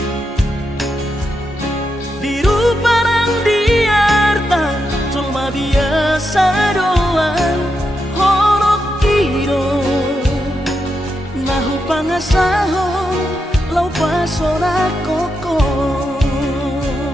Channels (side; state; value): both; normal; correlation 0.85